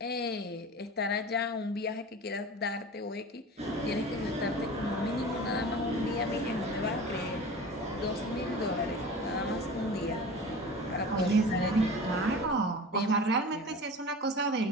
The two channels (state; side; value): normal; both; correlation 0.36